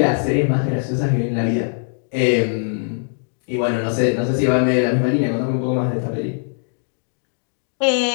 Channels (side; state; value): right; silent; digital silence